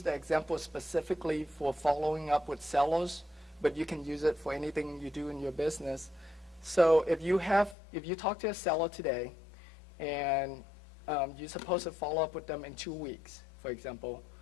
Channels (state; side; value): drops out; right; at 7.8 s